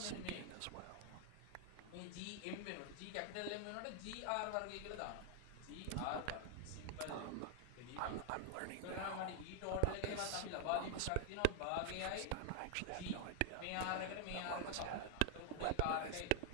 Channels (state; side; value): different; both; correlation 0.00